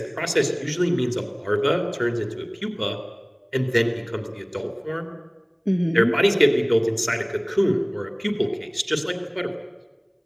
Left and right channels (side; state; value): both; identical; correlation 1.00